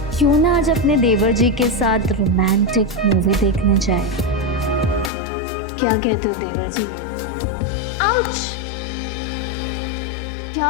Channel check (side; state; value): right; drops out; at 5.1 s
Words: क्यों ना आज अपने देवर जी के साथ रोमांटिक मूवी देखने जाए। क्या कहते हो देवर जी? आउच! क्या